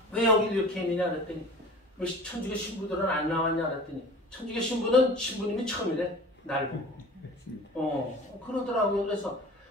왜 여기 이렇게 있느냐 그랬더니 왜 천주교 신부들은 안 나왔냐 그랬더니 천주교 신부는 신부님이 처음이래. 날 보고. 그러더라고요. 그래서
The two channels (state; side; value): normal; both; correlation 0.41